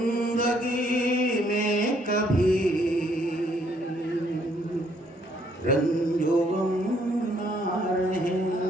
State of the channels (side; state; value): both; normal; correlation 0.67